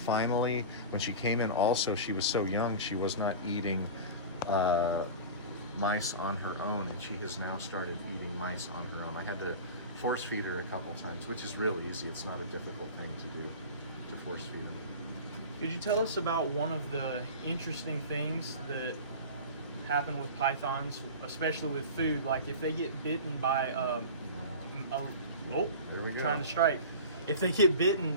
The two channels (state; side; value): inverted; both; correlation -0.33